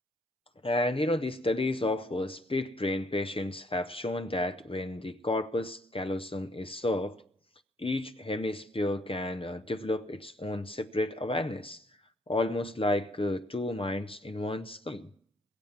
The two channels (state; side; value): normal; both; correlation 0.66